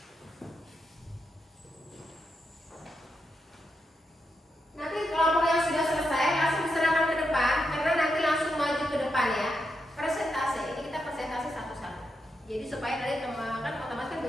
Nanti kelompok yang sudah selesai langsung diserahkan ke depan karena nanti langsung maju ke depan ya. Presentasi ini kita presentasi satu-satu. Jadi supaya dari teman kan otomatis kan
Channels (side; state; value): both; normal; correlation 0.84